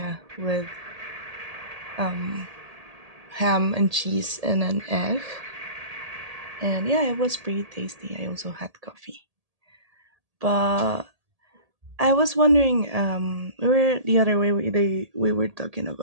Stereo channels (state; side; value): late; left; 1.8 ms